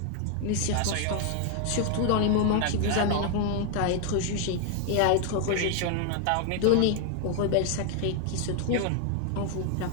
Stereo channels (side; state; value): both; different; correlation 0.00